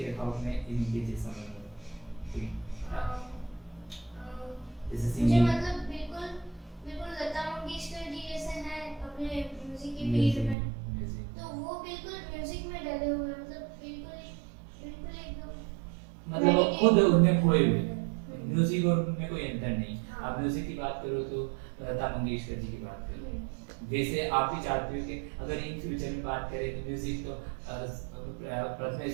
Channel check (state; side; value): drops out; left; at 10.6 s